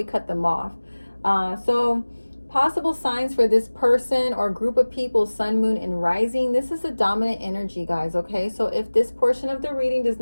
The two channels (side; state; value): both; inverted; correlation -1.00